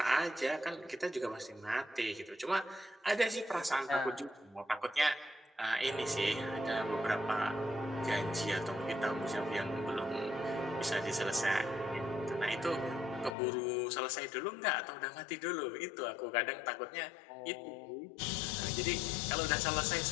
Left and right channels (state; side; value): drops out; right; at 13.4 s